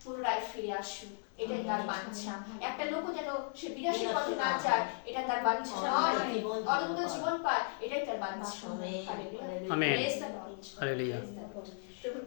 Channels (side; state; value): right; silent; 54 dB below the other